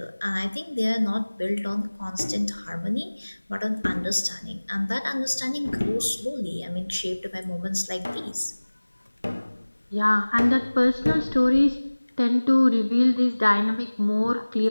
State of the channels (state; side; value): inverted; both; correlation -1.00